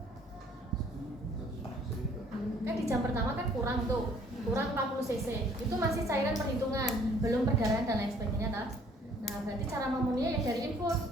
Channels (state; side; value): normal; both; correlation 0.59